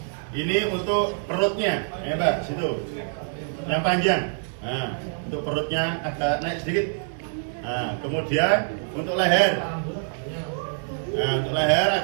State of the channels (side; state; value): left; silent; digital silence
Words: Ini untuk perutnya, ya Mbak, situ yang panjang. Nah, untuk perutnya agak naik sedikit. Nah, kemudian untuk leher. Nah, untuk leher